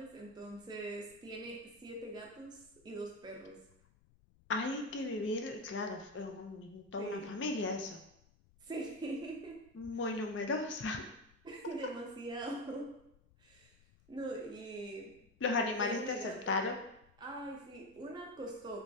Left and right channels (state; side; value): noise; left; rumble, 28 dB below the sound